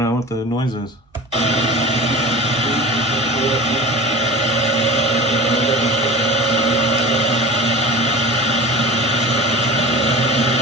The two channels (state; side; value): normal; both; correlation 0.34